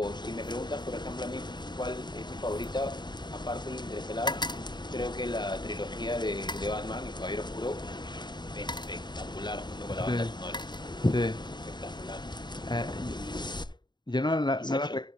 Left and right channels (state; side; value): late; right; 0.21 ms